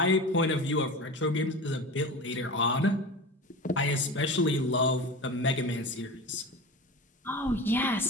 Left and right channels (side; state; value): both; normal; correlation 0.30